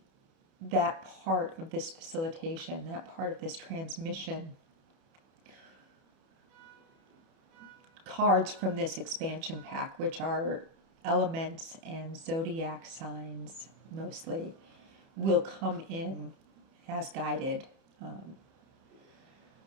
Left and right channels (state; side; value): late; left; 30 ms